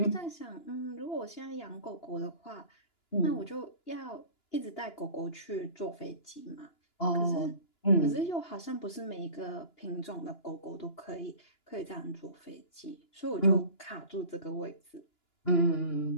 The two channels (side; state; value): right; late; 2.9 ms